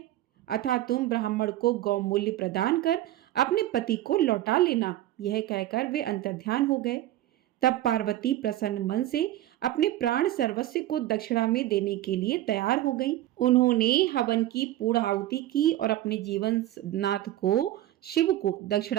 अतः तुम ब्राह्मण को गौ मूल्य प्रदान कर अपने पति को लौटा लेना। यह कहकर वे अंतर्ध्यान हो गए। तब पार्वती प्रसन्न मन से अपने प्राण सर्वस्व को दक्षिणा में देने के लिए तैयार हो गई। उन्होंने हवन की पूर्ण आहुति की और अपने जीवन नाथ को शिव को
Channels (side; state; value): left; quieter; 14.3 dB